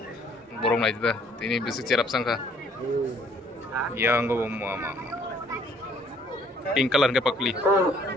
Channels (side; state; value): both; normal; correlation 0.61